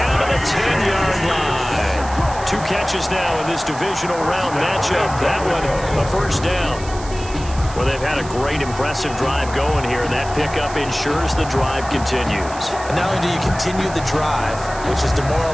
to the 10-yard line. 2 catches now in this divisional round matchup. That one, a first down. Well, they've had a great, impressive drive going here, and that pickup ensures the drive continues. And not only do you continue the drive, which is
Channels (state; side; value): noise; right; hiss, 15 dB below the sound